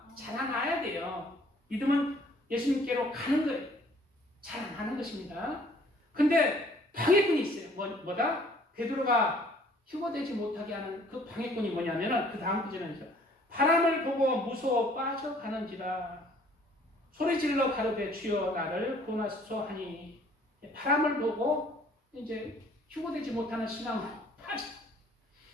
자라나야 돼요. 믿음은 예수님께로 가는 거예요. 자라나는 것입니다. 근데 방해꾼이 있어요. 뭐다? 베드로가 휴거되지 못하게 하는 그 방해꾼이 뭐냐면은 그 다음 구절에 있어요. 바람을 보고 무서워 빠져가는지라 소리질러 가로되 주여 나를 구원하소서 하니 바람을 보고 이제 휴거되지 못하는 신앙으로 빠져.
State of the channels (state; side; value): normal; both; correlation 0.57